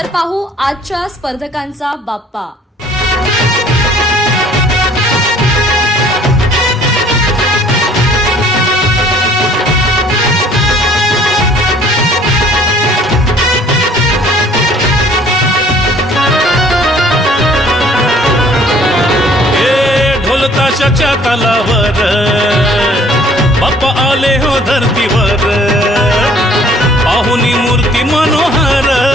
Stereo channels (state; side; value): normal; both; correlation 0.56